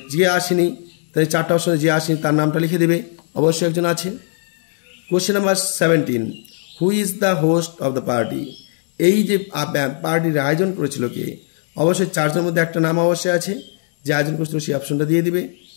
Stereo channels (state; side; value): silent; right; 59 dB below the other